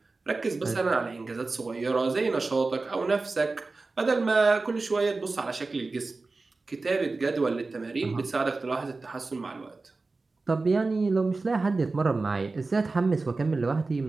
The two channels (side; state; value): left; quieter; 3.7 dB